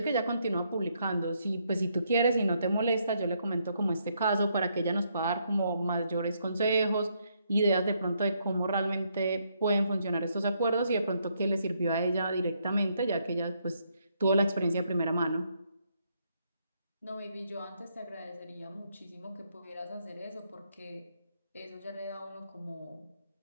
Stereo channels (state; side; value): inverted; both; correlation -0.74